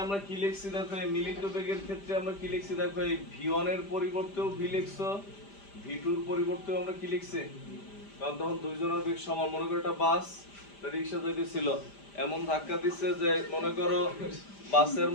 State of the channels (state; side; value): late; right; 5.0 ms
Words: আমরা কি লিখছি, দেখো এই মিলিত বেগের ক্ষেত্রে আমরা কি লিখছি, দেখো এই v1 এর পরিবর্তেও v লিখছো, v2 এর পরিবর্তেও আমরা কি লিখছি, কারণ তখন দুইজনের বেগ সমান। মনে করো একটা বাস রিক্সা যাইতেছিল, এমন ধাক্কা দিচ্ছে যে মনে করো বাসের